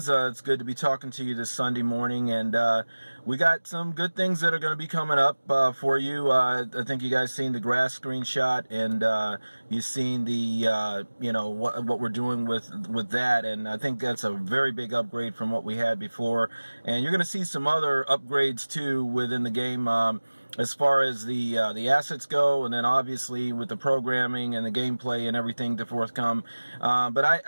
it's good to be talking to you this Sunday morning, and we got some good things that are going to be coming up for you. I think you guys seen the grass screenshot, and you've seen the what we're doing with that, and I think that's a very big upgrade from what we had before. And you're going to see some other upgrades too within the game. As far as the assets go, and then obviously with the programming and the gameplay and everything to forthcome. But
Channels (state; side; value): inverted; both; correlation -1.00